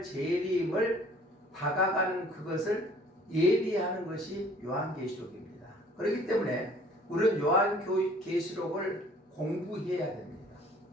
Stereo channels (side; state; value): both; normal; correlation 0.54